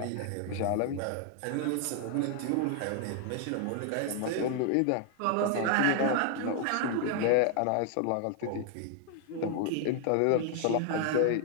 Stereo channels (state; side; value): different; both; correlation 0.00